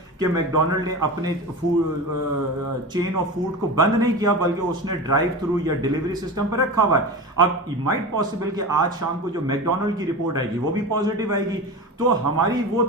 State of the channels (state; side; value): normal; both; correlation 0.27